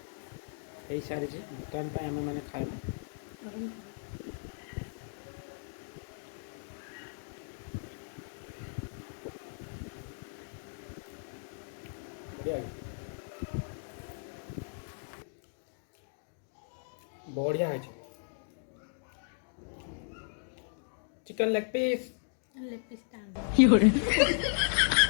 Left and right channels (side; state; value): right; silent; digital silence